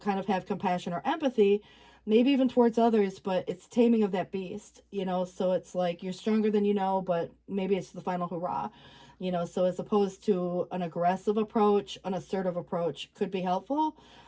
kind of have compassion or empathy, maybe even towards others, but it's taming of that beast, so it's like you're stronger than but maybe it's the final hurrah. So as opposed to an aggressive approach, an assertive approach could be helpful,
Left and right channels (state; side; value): identical; both; correlation 1.00